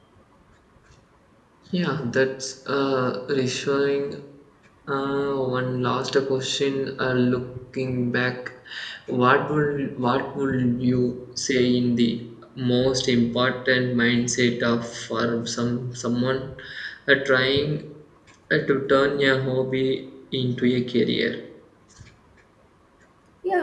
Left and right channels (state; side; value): identical; both; correlation 1.00